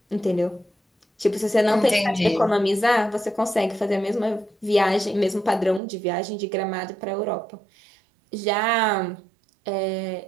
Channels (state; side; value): drops out; left; at 5.8 s